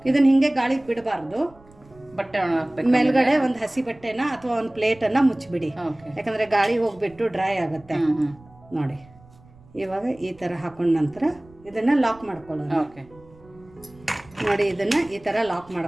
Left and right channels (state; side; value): noise; right; rumble, 26 dB below the sound